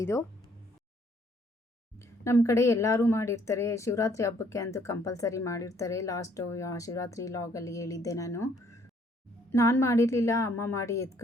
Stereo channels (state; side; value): normal; both; correlation 0.64